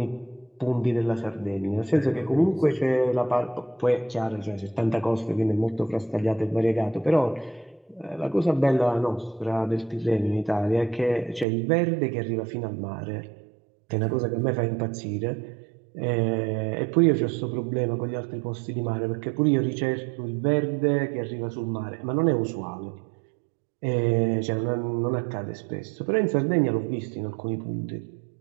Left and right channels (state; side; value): drops out; left; at 11.5 s